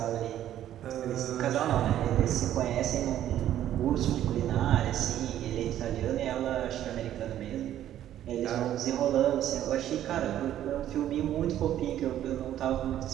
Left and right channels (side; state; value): left; quieter; 11.8 dB